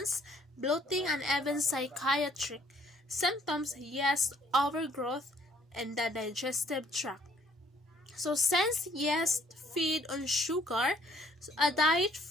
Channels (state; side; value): normal; both; correlation 0.62